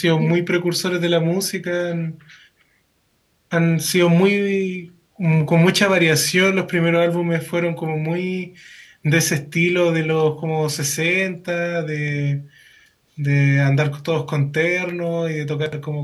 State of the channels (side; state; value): both; identical; correlation 1.00